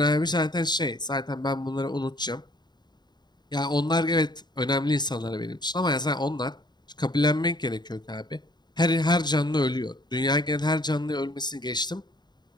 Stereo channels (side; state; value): right; late; 0.21 ms